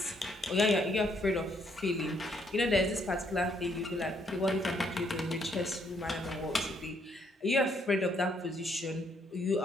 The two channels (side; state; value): both; normal; correlation 0.71